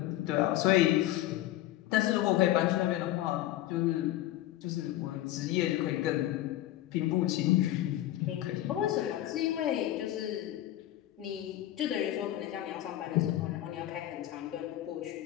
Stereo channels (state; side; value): quieter; right; 14.1 dB